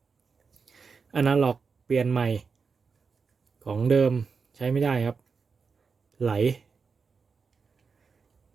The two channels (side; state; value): left; quieter; 5.2 dB